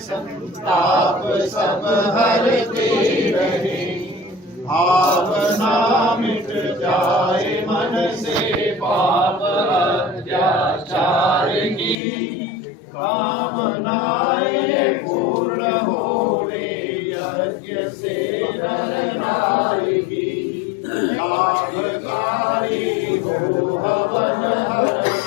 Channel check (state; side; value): drops out; right; at 12.0 s